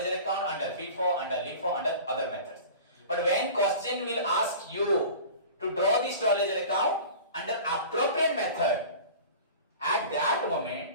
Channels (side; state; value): both; inverted; correlation -0.38